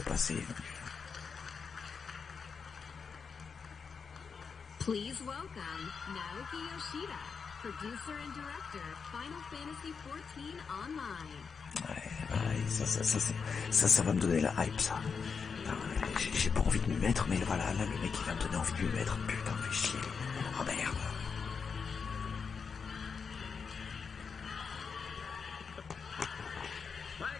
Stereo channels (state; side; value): quieter; right; 5.7 dB